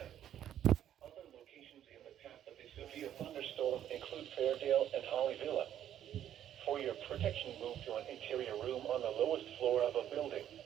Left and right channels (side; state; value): left; quieter; 10.8 dB